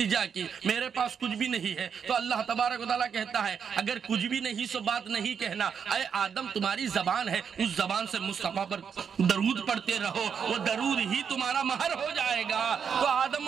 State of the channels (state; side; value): quieter; left; 7.0 dB